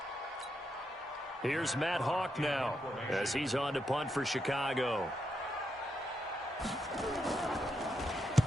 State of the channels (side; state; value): both; normal; correlation 0.82